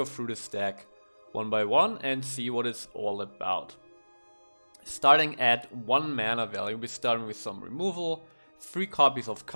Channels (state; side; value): inverted; both; correlation -1.00